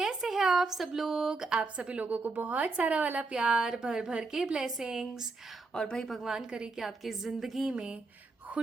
हैं आप सब लोग। आप सभी लोगों को बहुत सारा वाला प्यार, भर भर के ब्लेसिंग्स। और भाई भगवान करे कि आपकी ज़िंदगी में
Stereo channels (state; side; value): quieter; left; 3.7 dB